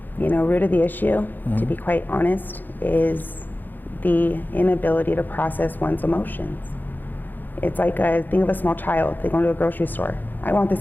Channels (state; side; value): late; right; 0.088 ms